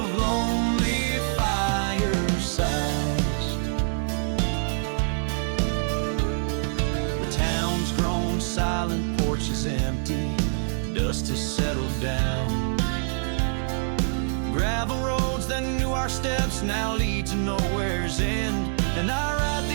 lonely firesides. The town's grown silent, porch is empty, dust has settled down. Gravel roads that knew our steps now lead to nowhere's end. And I ride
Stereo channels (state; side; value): silent; left; digital silence